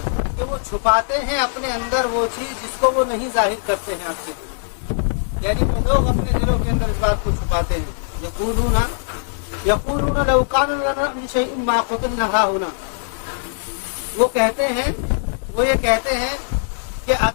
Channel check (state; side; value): silent; right; digital silence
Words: کہ وہ چھپاتے ہیں اپنے اندر وہ چیز جس کو وہ نہیں ظاہر کرتے ہیں آپ سے. یعنی وہ لوگ اپنے دلوں کے اندر اس بات کو چھپاتے ہیں. یقولون لو كان لنا من شيء ما قتلنا هاهنا، وہ یہ کہتے ہیں کہ